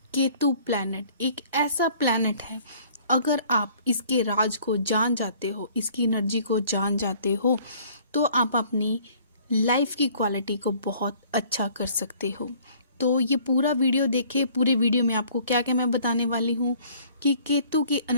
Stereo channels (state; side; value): inverted; both; correlation -0.56